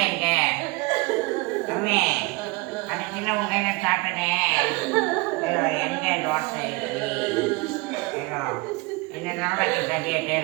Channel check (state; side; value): quieter; left; 25.8 dB